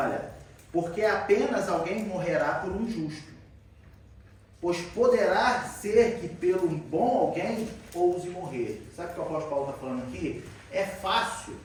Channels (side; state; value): both; identical; correlation 1.00